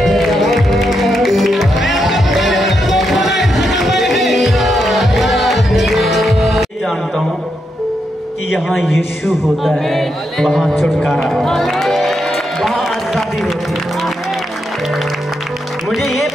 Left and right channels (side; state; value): both; normal; correlation 0.82